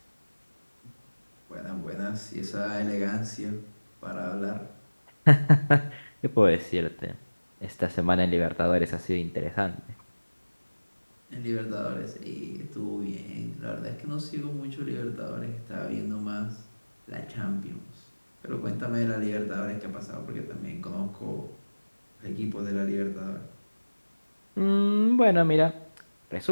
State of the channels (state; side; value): inverted; both; correlation -1.00